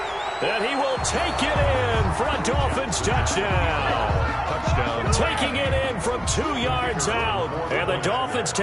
And he will take it in for a Dolphins touchdown. Touchdown. Taking it in from 2 yards out. And the Dolphins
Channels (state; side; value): identical; both; correlation 1.00